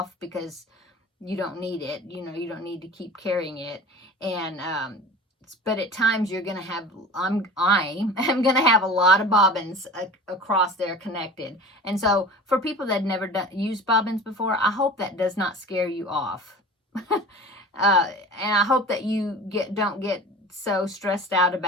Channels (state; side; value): normal; both; correlation 0.38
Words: because you don't need it. You know, you don't need to keep carrying it. And, but at times you're going to have, I'm going to have a lot of bobbins across there connected. And so for people that never used bobbins before, I hope that does not scare you off. And I hope that you don't get so stressed out